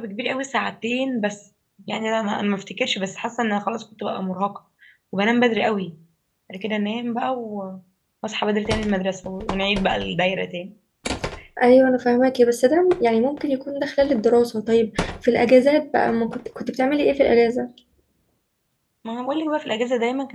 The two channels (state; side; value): identical; both; correlation 1.00